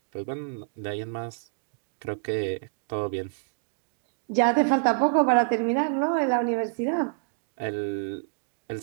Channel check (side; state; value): left; silent; digital silence